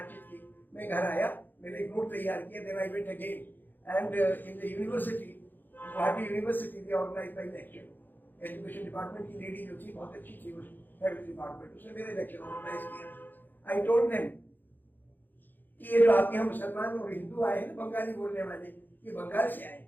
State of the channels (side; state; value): right; late; 0.089 ms